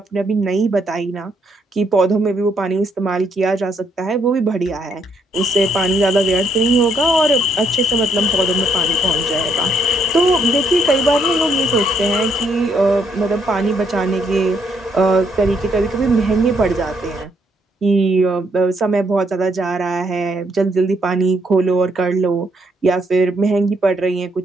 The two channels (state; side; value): normal; both; correlation 0.72